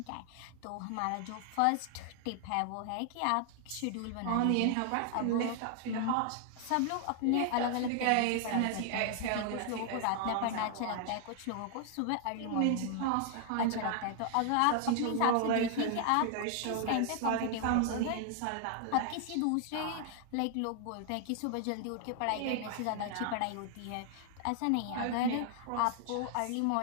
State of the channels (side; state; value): both; different; correlation 0.00